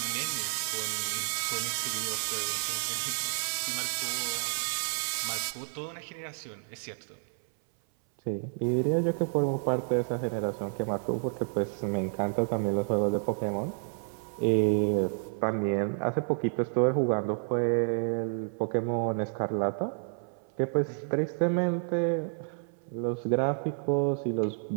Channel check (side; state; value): left; silent; 58 dB below the other